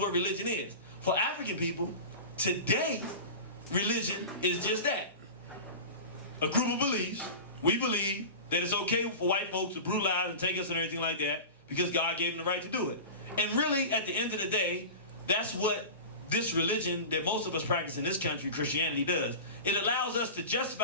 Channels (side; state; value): both; inverted; correlation -0.31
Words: religion is. For African people, today, religion is just that. A group of beliefs. We believe that it's okay for white folks to brutalize and take us and everything like that because God gave them the right to do it. And really, at the end of the day, that's what this religion that most of us practice in this country, Christianity, does. It allows us to